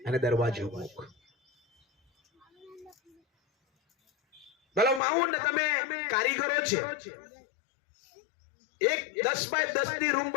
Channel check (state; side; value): drops out; right; at 5.0 s